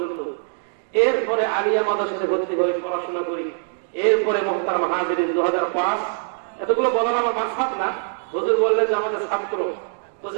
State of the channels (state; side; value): silent; left; 59 dB below the other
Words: এরপরে আলিয়া মাদ্রাসাতে ভর্তি হয়ে পড়াশোনা করি। এরপরে মুহতারাম হাজিরিন 2005, এতগুলো বলার আমার মাকসাদ না, হুজুর বললেন যে আমাদের ছাত্র। তো